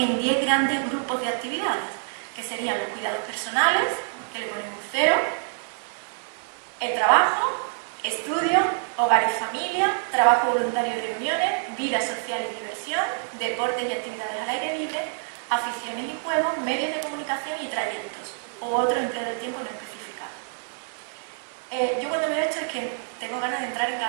10 grandes grupos de actividades, que serían los cuidados personales, que le ponemos 0, el trabajo, estudio, hogar y familia, trabajo voluntario y reuniones, vida social y diversión, deportes y actividades al aire libre, aficiones y juegos, medios de comunicación y trayectos, o otro empleo del tiempo no especificado. Yo cuando veo esto es que tengo ganas de entrar en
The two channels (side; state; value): left; silent; digital silence